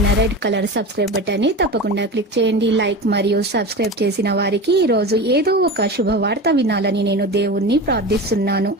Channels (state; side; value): normal; both; correlation 0.28